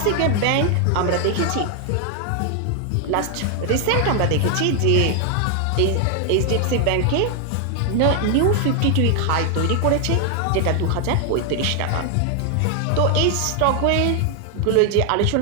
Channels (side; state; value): both; different; correlation 0.00